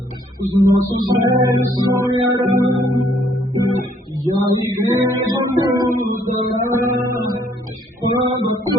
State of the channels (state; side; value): normal; both; correlation 0.65